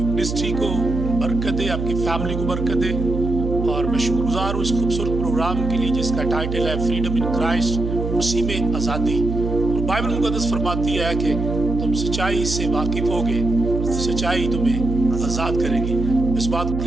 منسٹری کو برکت دے، آپ کی فیملی کو برکت دے، اور میں شکر گزار ہوں اس خوبصورت پروگرام کے لیے جس کا ٹائٹل ہے فریڈم ان کرائسٹ، مسیح میں آزادی۔ اور بائبل مقدس فرماتی ہے کہ تم سچائی سے واقف ہوگے، سچائی تمہیں آزاد کرے گی۔ اس بات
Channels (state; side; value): noise; right; hum, 4 dB below the sound